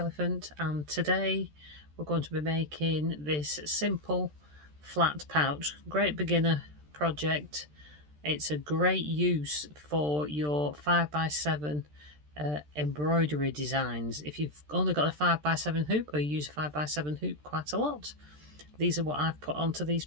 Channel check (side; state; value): left; late; 13 ms